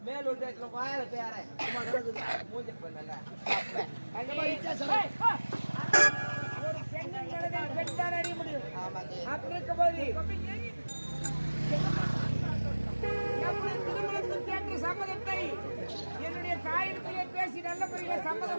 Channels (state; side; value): inverted; both; correlation -1.00